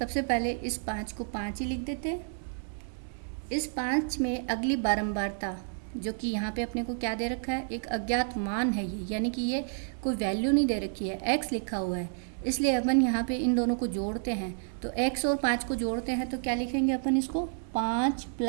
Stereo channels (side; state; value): left; silent; 58 dB below the other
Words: पहले इस 5 को 5 ही लिख देते हैं। इस 5 में अगली बारंबारता जो कि यहाँ पे अपने को क्या दे रखा है, एक अज्ञात मान है ये, यानी कि ये कोई वैल्यू नहीं दे रखी है, x लिखा हुआ है, इसलिए अपन यहाँ पे इन दोनों को जोड़ते हैं। तो x और 5 को जोड़ते हैं तो क्या लिखेंगे अपन इसको, 5